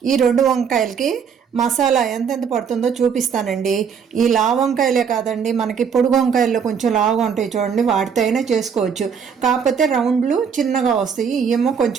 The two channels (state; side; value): quieter; left; 6.8 dB